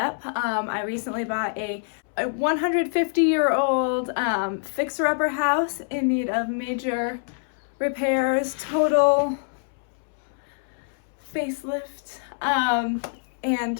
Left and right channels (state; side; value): silent; right; 62 dB below the other